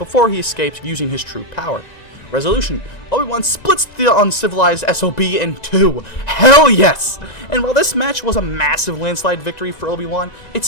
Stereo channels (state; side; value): late; right; 1.9 ms